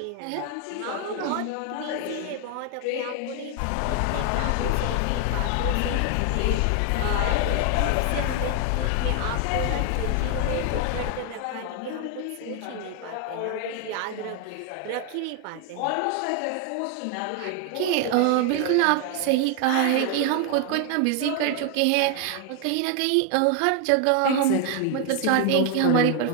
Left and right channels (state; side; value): different; both; correlation 0.01